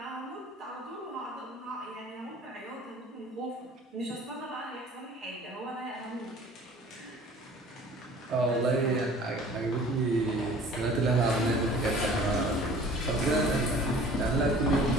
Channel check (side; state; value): both; normal; correlation 0.48